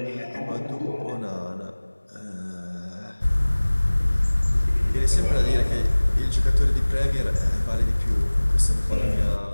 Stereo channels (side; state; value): both; inverted; correlation -1.00